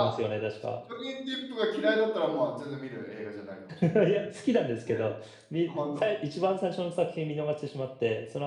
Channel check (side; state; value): both; identical; correlation 1.00